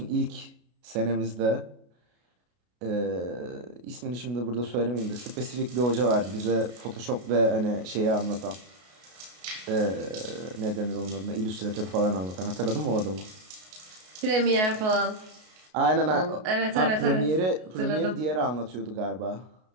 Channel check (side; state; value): left; late; 33 ms